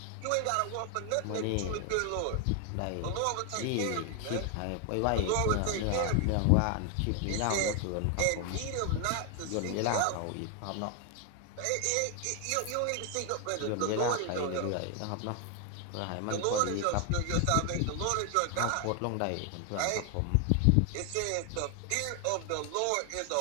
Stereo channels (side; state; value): both; different; correlation 0.00